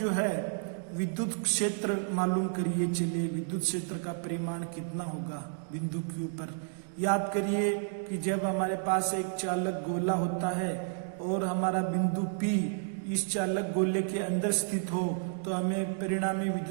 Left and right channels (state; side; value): silent; left; digital silence